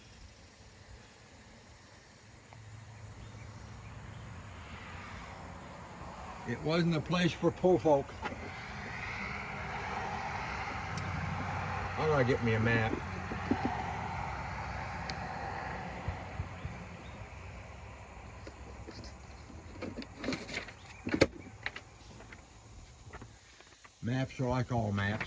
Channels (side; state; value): both; identical; correlation 1.00